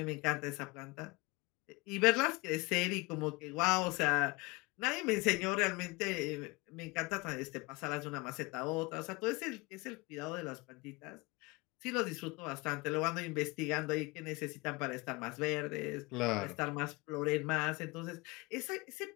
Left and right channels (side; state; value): right; quieter; 25.2 dB